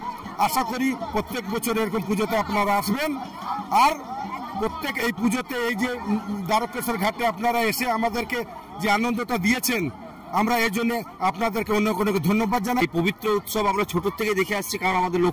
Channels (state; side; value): identical; both; correlation 1.00